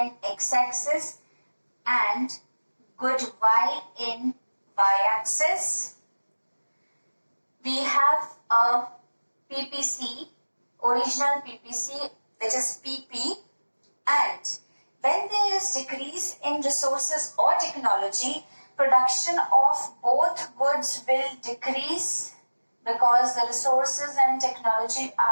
x-axis, and good y in y-axis. We have a PPC, original PPC, which is PP, and when there is decrease in resources or technology, production of both goods will decrease, because the resources and technology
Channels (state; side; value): inverted; both; correlation -1.00